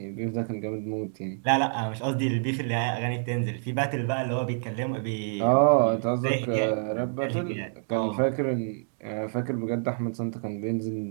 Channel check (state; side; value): silent; left; digital silence